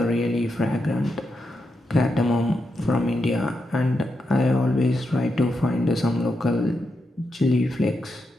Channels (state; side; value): normal; both; correlation 0.85